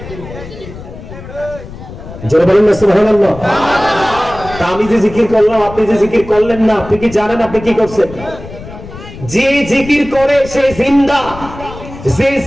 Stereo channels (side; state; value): left; noise; rumble, 14 dB below the sound